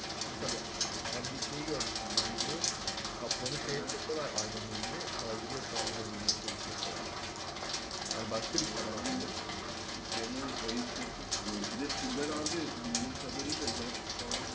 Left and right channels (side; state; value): both; identical; correlation 1.00